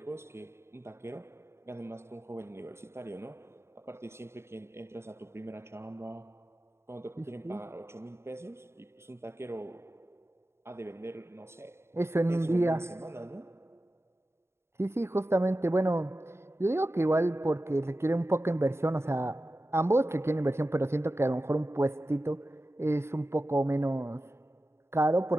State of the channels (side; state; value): left; late; 0.13 ms